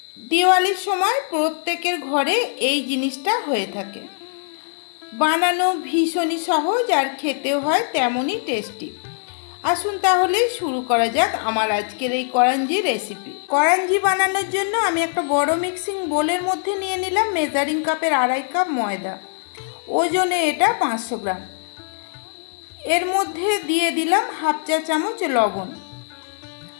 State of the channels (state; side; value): silent; right; digital silence